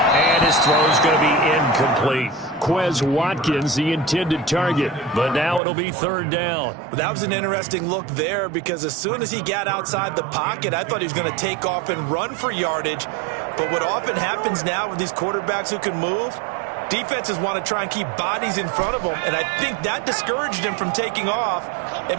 And his throw's going to be incomplete. Quez Watkins, the intended target. But now it'll be 3rd down. Well, that was an interesting look there because as soon as he got outside the pocket, I thought he was going to take off and run for yardage. But what often happens now with these quarterbacks who can move, defenses want to try and keep bodies in front of them, and I think that discouraged him from taking off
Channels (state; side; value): drops out; left; at 5.6 s